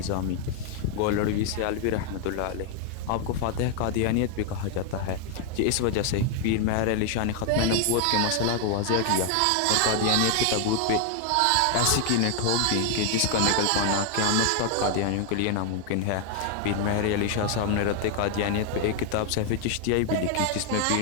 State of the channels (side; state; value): both; different; correlation 0.00